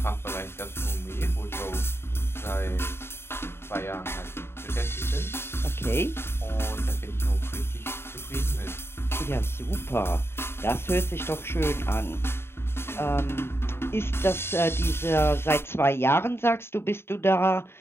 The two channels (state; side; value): late; right; 0.12 ms